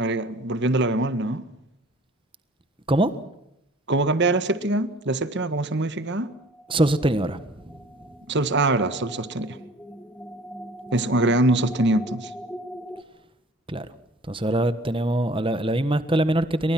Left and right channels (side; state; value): both; normal; correlation 0.50